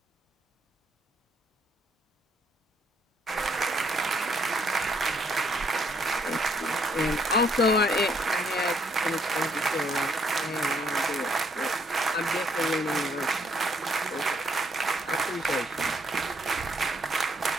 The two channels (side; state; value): both; normal; correlation 0.69